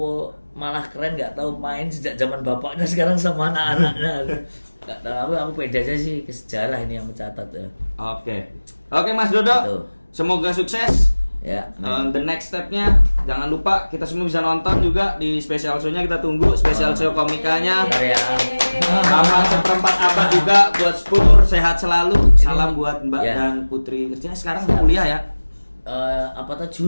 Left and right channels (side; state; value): both; inverted; correlation -1.00